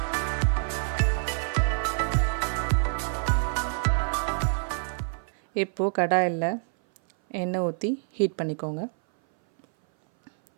இப்போது கடாயில் எண்ணெய் ஊற்றி ஹீட் பண்ணிக்கோங்க.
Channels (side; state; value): left; silent; 59 dB below the other